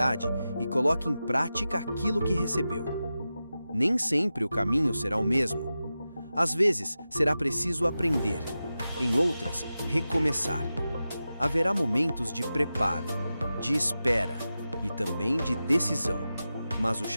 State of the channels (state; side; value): inverted; both; correlation -0.93